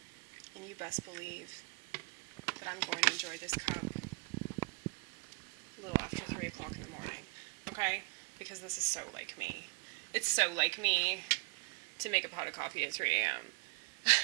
And you best believe that I'm going to enjoy this cup a little after 3 o'clock in the morning. Okay? Because this is so like me. It's so like me to make a pot of coffee at 3 a.m.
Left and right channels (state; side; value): quieter; left; 32.2 dB